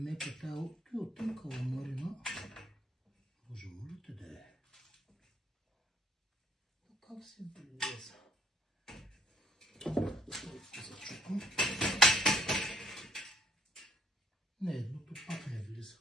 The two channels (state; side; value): normal; both; correlation 0.62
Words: тая от тънка ламарина. Боже, моля те да е. Как се влеза? Зачупам. Не, едното пак не влиза.